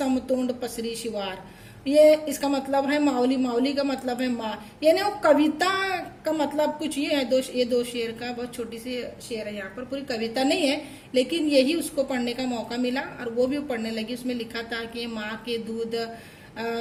पसरी शिवार। ये इसका मतलब है माऊली का मतलब है माँ, यानी वो कविता का मतलब कुछ ये है। ये दो शेर का बहुत छोटी सी शेर है, यहाँ पर पूरी कविता नहीं है, लेकिन यही उसको पढ़ने का मौका मिला और वो भी पढ़ने लगी। उसमें लिखा था कि माँ के दूध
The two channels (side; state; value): both; identical; correlation 1.00